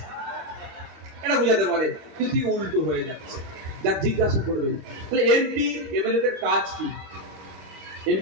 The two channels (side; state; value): left; late; 25 ms